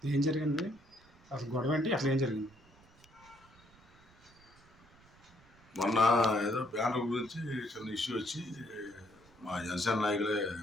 ఏం జరిగింది అసలు? గొడవ ఏంటి? అసలు ఏం జరిగింది? మొన్న ఏదో బ్యానర్ గురించి చిన్న ఇష్యూ వచ్చి మా జనసేన నాయకులే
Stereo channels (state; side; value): noise; right; rumble, 27 dB below the sound